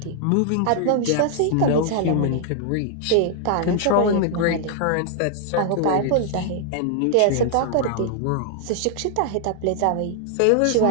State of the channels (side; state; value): both; different; correlation 0.00